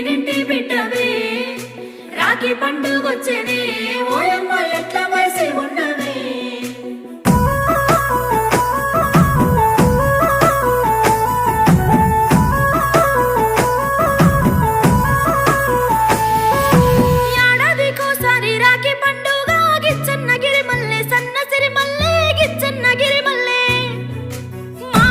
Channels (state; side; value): identical; both; correlation 1.00